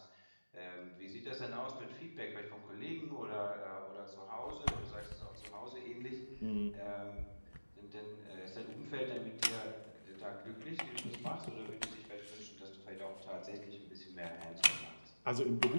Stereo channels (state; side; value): inverted; both; correlation -1.00